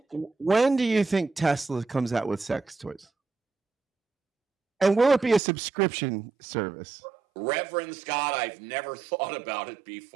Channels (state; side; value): drops out; left; at 5.4 s